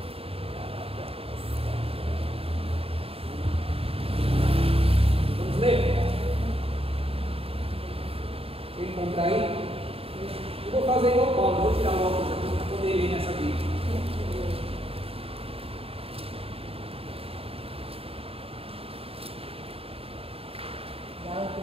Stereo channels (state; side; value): late; left; 0.28 ms